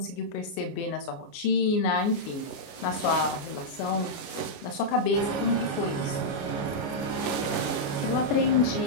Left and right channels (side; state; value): right; late; 29 ms